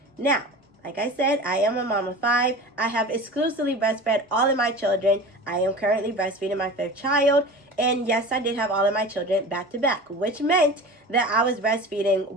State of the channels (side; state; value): both; normal; correlation 0.35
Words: Now, like I said, I am a mom of 5. I have exclusively breastfed all of my children. I am currently breastfeeding my 5th child. And yes, I did have all of my children back to back, which meant that I was breastfeeding